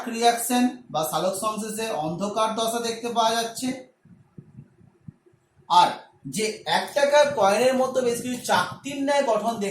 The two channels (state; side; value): identical; both; correlation 1.00